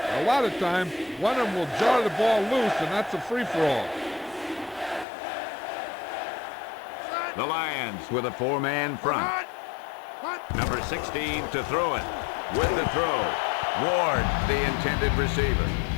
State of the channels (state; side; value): drops out; right; at 5.1 s